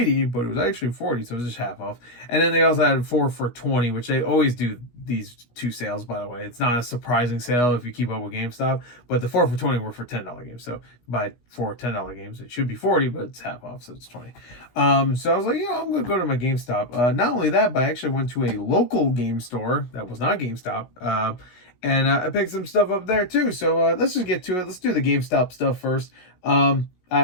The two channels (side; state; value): right; late; 16 ms